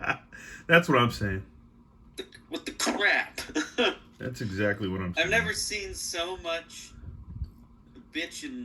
what I'm saying. With the crap. That's exactly what I'm saying. I've never seen so much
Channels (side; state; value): both; identical; correlation 1.00